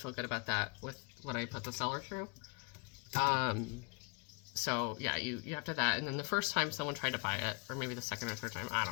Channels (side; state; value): right; quieter; 32.0 dB